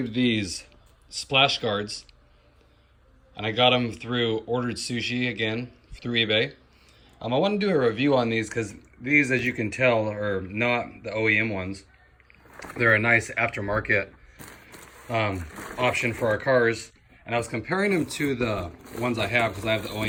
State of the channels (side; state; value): both; identical; correlation 1.00